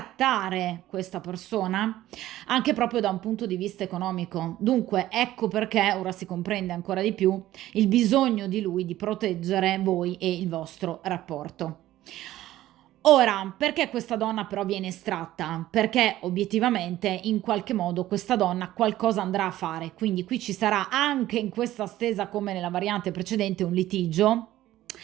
questa persona anche proprio da un punto di vista economico. Dunque, ecco perché ora si comprende ancora di più il bisogno di lui di proteggere voi e il vostro rapporto. Ora, perché questa donna però viene estratta? Perché obiettivamente in qualche modo questa donna qualcosa andrà a fare, quindi qui ci sarà anche in questa stesa come nella variante precedente un litigio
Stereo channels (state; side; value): quieter; left; 14.6 dB